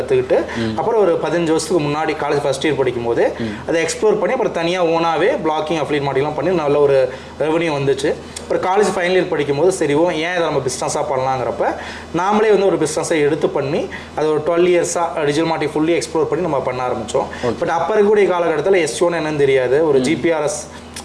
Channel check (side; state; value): both; identical; correlation 1.00